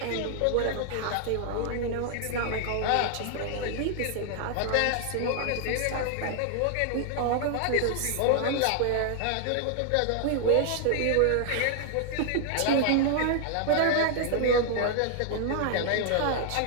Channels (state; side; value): different; both; correlation 0.00